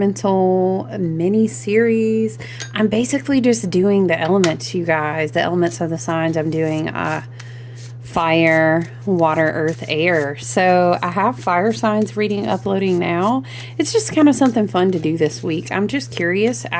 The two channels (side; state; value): both; identical; correlation 1.00